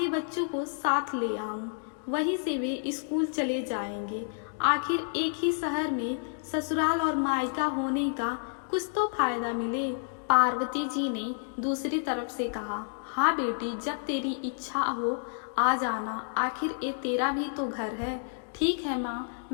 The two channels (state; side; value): silent; right; digital silence